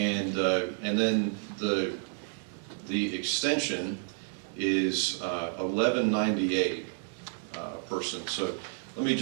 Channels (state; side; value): silent; left; 58 dB below the other